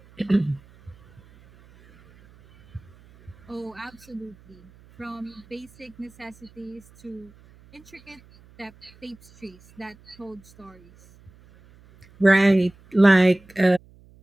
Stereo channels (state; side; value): noise; right; hum, 26 dB below the sound